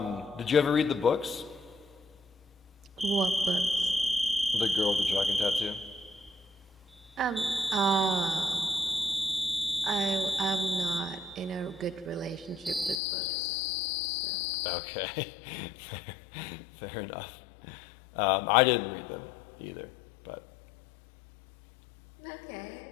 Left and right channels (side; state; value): right; drops out; at 13.0 s